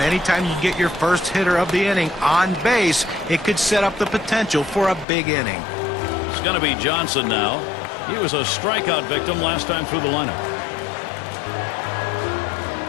anytime you get your first hitter of the inning on base, it could set up the potential for a big inning. It's going to be Johnson now. He was a strikeout victim last time through the lineup.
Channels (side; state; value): right; drops out; at 5.1 s